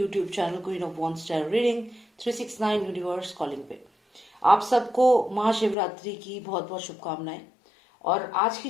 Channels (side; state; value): right; drops out; at 5.8 s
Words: channel queen of one star reading 369 universe calling पे। आप सबको महाशिवरात्रि की बहुत बहुत शुभकामनाएं। और आज की